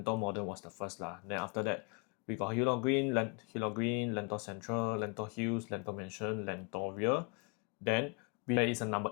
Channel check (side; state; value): right; quieter; 35.2 dB